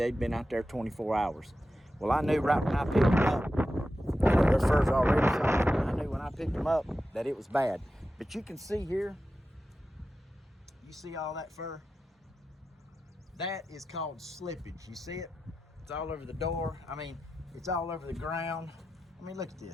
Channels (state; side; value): normal; both; correlation 0.91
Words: been out there 24 hours. Well, I knew right when I picked them up, their fur's already soft, and I knew when I picked them up that it was bad. But you can see here, you see all that fur? That is called slippage. You see it? It's all over the door. I mean, it's all over the ground. I mean, look at